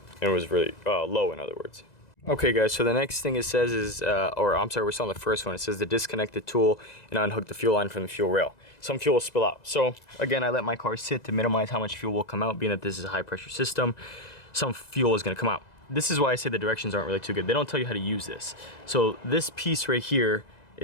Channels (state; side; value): late; right; 2.0 ms